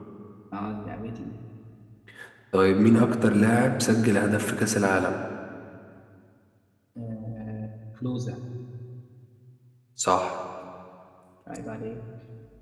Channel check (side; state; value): both; identical; correlation 1.00